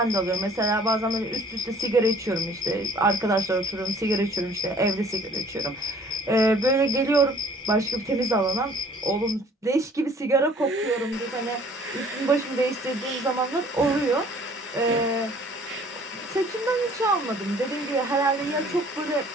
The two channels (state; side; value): normal; both; correlation 0.54